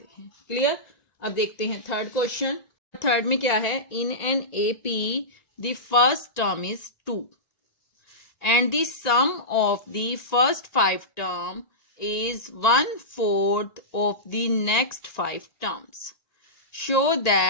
हैं। क्लियर। अब देखते हैं थर्ड क्वेश्चन। थर्ड में क्या है, in an AP the first term is 2 and the sum of the first 5 term is 1/4 of the next 5 terms. Show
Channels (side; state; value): right; late; 1.9 ms